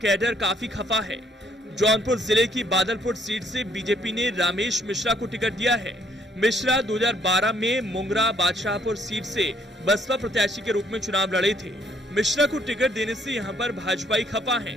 काफी खफा है। जौनपुर जिले की बादलपुर सीट से बीजेपी ने रामेश मिश्रा को टिकट दिया है। मिश्रा 2012 में मुंगरा बादशाहपुर सीट से बसपा प्रत्याशी के रूप में चुनाव लड़े थे। मिश्रा को टिकट देने से यहां पर भाजपाई खपा है।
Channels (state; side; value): normal; both; correlation 0.66